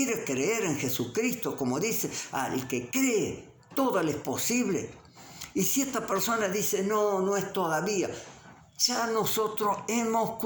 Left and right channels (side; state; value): both; identical; correlation 1.00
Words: creer en Jesucristo? Como dice, al que cree, todo le es posible. Y si esta persona dice, no es todavía, ya nosotros hemos